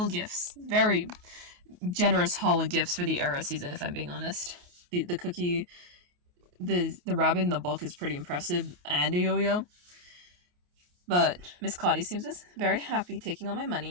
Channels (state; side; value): late; left; 28 ms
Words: gifts. Very generous haul of gifts for the era season, if I'm being honest. The cookie, the rabbit in the book is pretty impressive, and a yo-yo. But Miss Claudie seems very happy taking all my